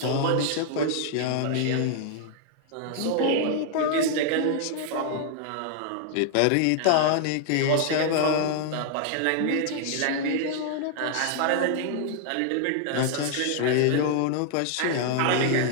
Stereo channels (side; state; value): both; different; correlation 0.00